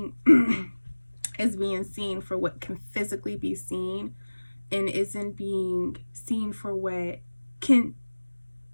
is being seen for what can physically be seen, and isn't being seen for what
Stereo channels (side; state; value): both; inverted; correlation -1.00